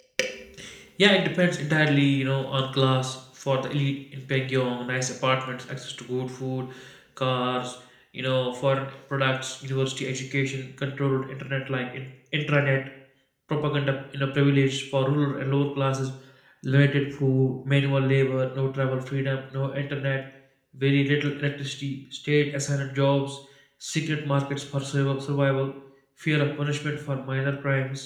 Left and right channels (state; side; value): identical; both; correlation 1.00